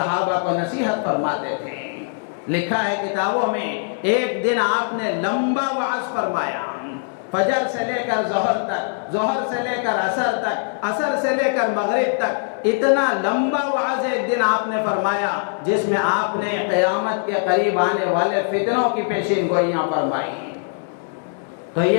کو نصیحت فرماتے تھے۔ لکھا ہے کتابوں میں، ایک دن آپ نے لمبا وعظ فرمایا، فجر سے لے کر ظہر تک، ظہر سے لے کر عصر تک، عصر سے لے کر مغرب تک، اتنا لمبا وعظ ایک دن آپ نے فرمایا جس میں آپ نے قیامت کے قریب آنے والے فتنوں کی پیشین گوئیاں فرمائی۔ تو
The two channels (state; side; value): silent; right; digital silence